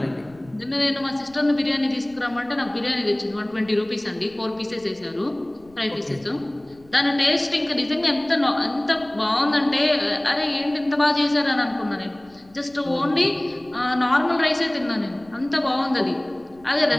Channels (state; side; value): noise; left; rumble, 28 dB below the sound